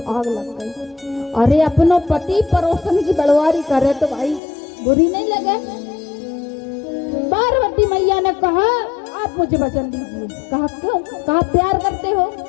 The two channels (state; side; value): drops out; right; at 4.4 s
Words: आग लग गई। अरे अपनो पति परोसन की बड़वारी करे तो भाई बुरी नहीं लगे? पार्वती मैया ने कहा आप मुझे वचन दीजिए। कहा क्यों? कहा प्यार करते हो?